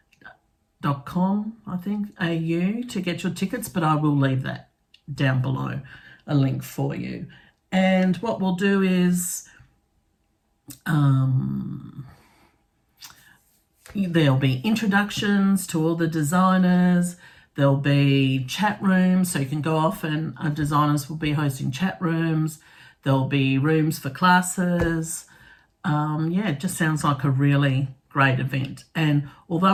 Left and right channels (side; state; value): both; identical; correlation 1.00